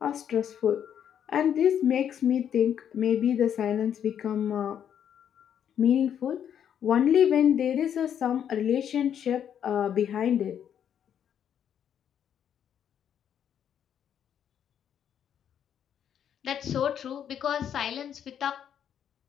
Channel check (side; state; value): right; quieter; 9.1 dB